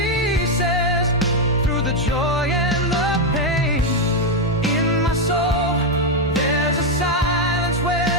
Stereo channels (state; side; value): normal; both; correlation 0.04